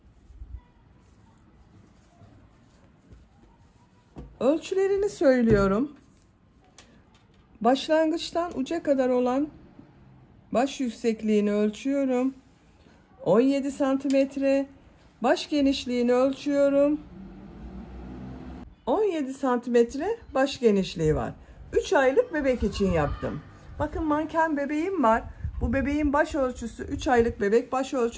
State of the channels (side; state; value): both; identical; correlation 1.00